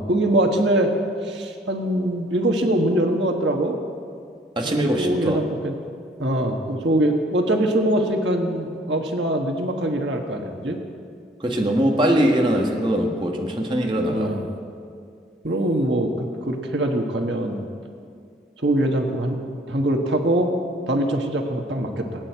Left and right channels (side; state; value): both; normal; correlation 0.57